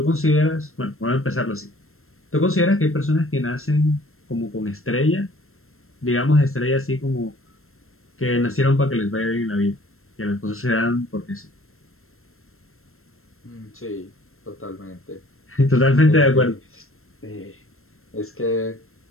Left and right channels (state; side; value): late; right; 0.62 ms